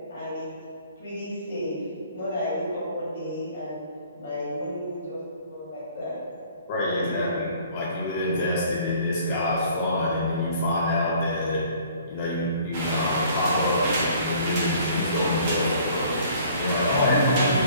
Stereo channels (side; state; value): both; inverted; correlation -0.54